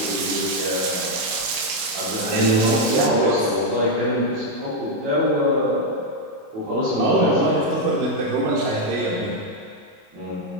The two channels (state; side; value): late; left; 28 ms